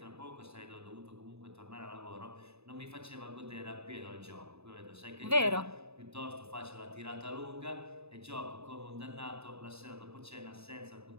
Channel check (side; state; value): left; late; 0.80 ms